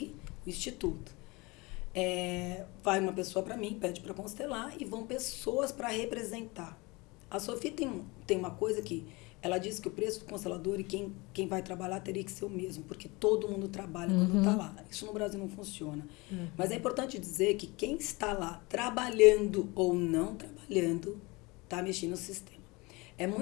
o Instituto. Vai uma pessoa para mim, pede para constelar, e vão pessoas para representar. A Sophie tem uma coisa que ela diz que o preço do constelador e quem vai trabalhar teria que ser o mesmo, porque todo mundo trabalha quando está lá. Isso no Brasil não funciona. Mas é importante dizer que quem está lá trabalhando ou não trabalhando está mexendo no sistema. É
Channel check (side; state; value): right; quieter; 24.8 dB